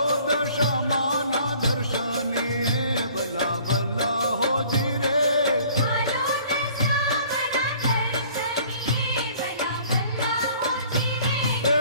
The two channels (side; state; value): both; inverted; correlation -0.54